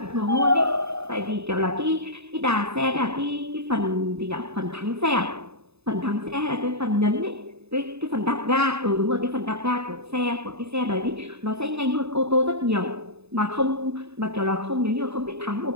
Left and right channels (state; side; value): late; left; 0.79 ms